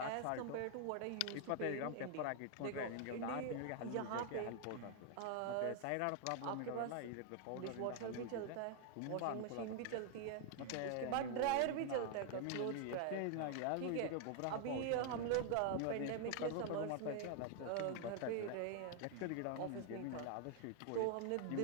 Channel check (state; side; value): different; both; correlation 0.00